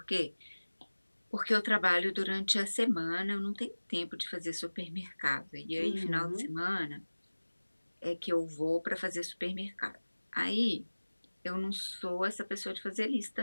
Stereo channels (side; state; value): both; inverted; correlation -1.00